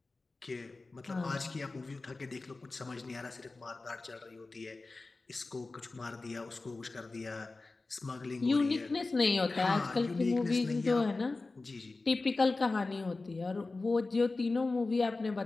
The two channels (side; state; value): right; quieter; 3.5 dB